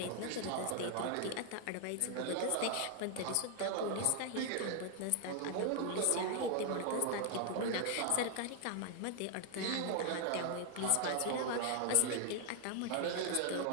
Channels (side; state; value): both; different; correlation 0.00